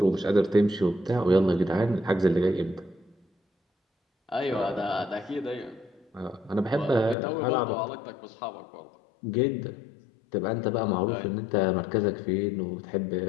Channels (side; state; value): right; drops out; at 7.2 s